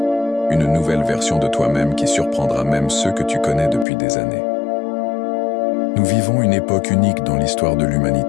une nouvelle version de toi-même qui surprendra même ceux que tu connais depuis des années. Nous vivons une époque unique dans l'histoire de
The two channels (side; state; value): right; drops out; at 3.9 s